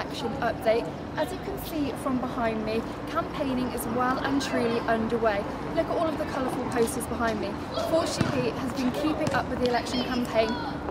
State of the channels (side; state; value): both; identical; correlation 1.00